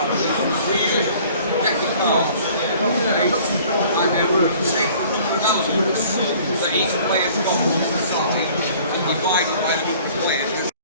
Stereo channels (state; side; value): inverted; both; correlation -0.52